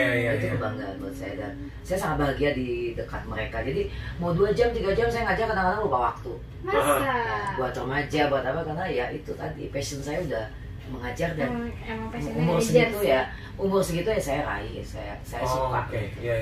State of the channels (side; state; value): both; identical; correlation 1.00